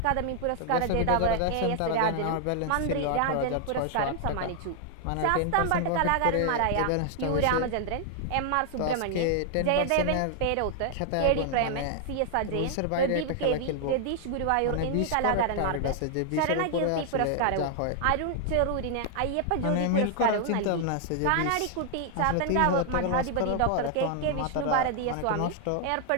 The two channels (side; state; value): both; different; correlation 0.00